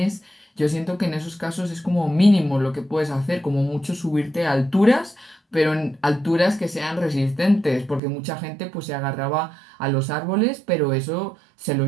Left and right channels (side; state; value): left; drops out; at 8.0 s